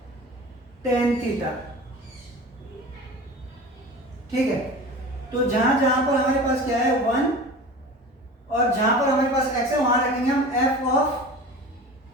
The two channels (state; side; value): normal; both; correlation 0.36